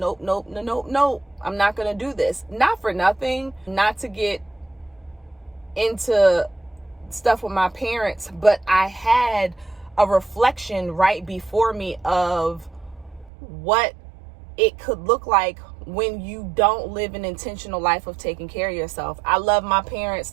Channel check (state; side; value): drops out; left; at 13.3 s